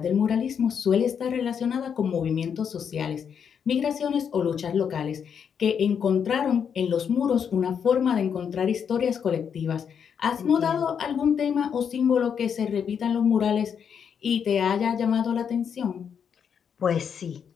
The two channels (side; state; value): right; quieter; 7.4 dB